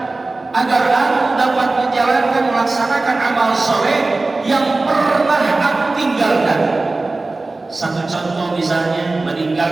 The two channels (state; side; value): quieter; left; 3.3 dB